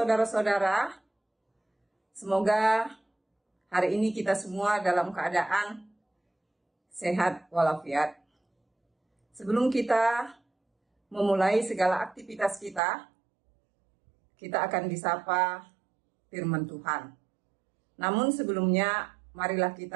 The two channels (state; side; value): drops out; left; at 12.8 s